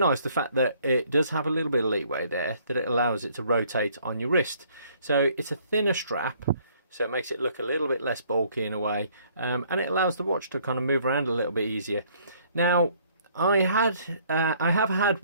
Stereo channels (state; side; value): inverted; both; correlation -0.62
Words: the fact that it does have a little bit of leeway there, that it allows it to rotate on your wrist. So it's a thinner strap, so it makes it look a little bit less bulky in a way, and it allows the watch to kind of move around a little bit easier. Now, I have had